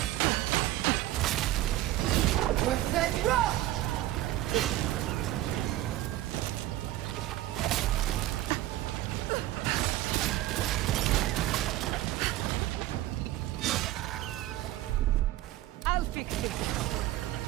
With that rock! I'll fix it.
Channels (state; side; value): quieter; left; 15.2 dB